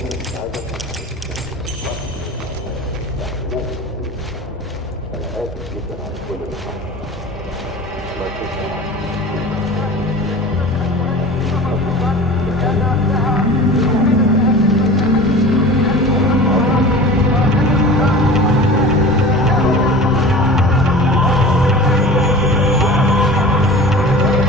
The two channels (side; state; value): both; normal; correlation 0.38